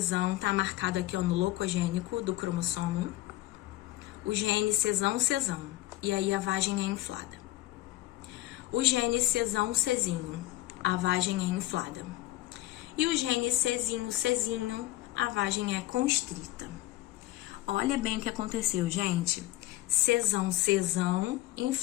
tá marcado aqui ó, no locogênico do cromossomo. O gene cesão, e aí a vagem é inflada. O gene cesão, a vagem é inflada. E o gene cezinho, a vagem é constrita. Olha bem o que aconteceu, gente. Cesão,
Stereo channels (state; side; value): quieter; right; 16.8 dB